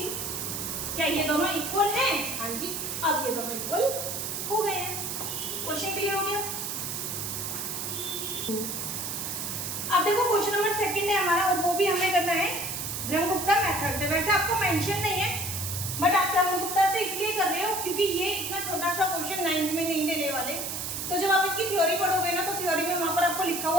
क्या ये दोनों इक्वल हैं? हाँ जी, अब ये दोनों इक्वल हो गए हैं। क्वेश्चन क्लियर हो गया। अब देखो क्वेश्चन नंबर 2 है हमारा, और वो भी हमें करना है ब्रह्मगुप्ता मेथड से। वैसे आपको मेंशन नहीं है, बट आप ब्रह्मगुप्ता से इसलिए कर रहे हो क्योंकि ये इतना छोटा सा क्वेश्चन 9th में नहीं देने वाले। तो जब आप इसकी थ्योरी पढ़ोगे ना, तो थ्योरी में वहां पर आपको लिखा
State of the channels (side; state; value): right; noise; hiss, 4 dB below the sound